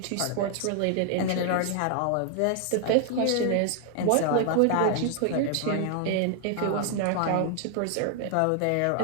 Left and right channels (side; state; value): both; different; correlation 0.00